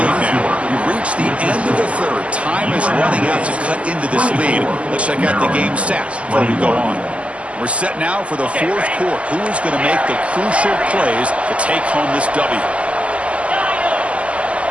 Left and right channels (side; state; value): left; late; 0.061 ms